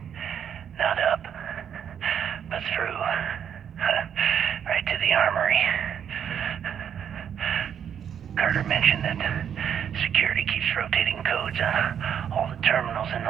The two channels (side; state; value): left; quieter; 8.6 dB